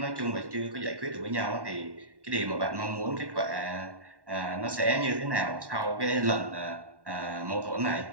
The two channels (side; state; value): left; late; 1.1 ms